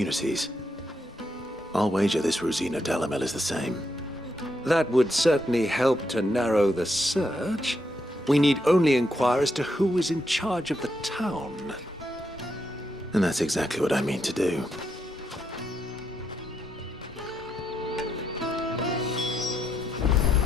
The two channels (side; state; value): both; normal; correlation 0.79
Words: I'll wager this Rosina Dalamel is the same. That would certainly help to narrow the search. We need only inquire as to who is in charge of the town. And that's exactly what I mean to do.